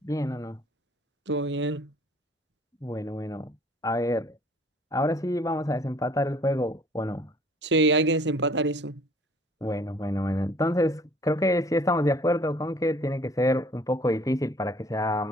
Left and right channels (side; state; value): both; normal; correlation 0.54